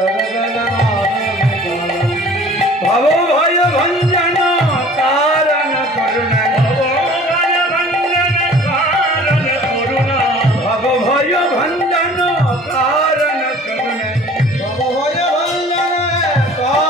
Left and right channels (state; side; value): normal; both; correlation 0.48